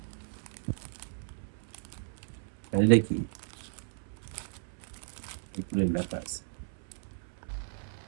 এটা কি এগুলো লেখা আছে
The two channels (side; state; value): left; silent; 55 dB below the other